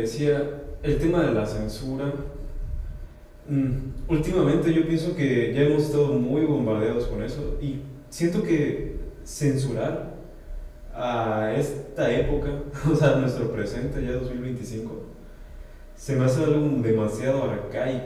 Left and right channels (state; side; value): identical; both; correlation 1.00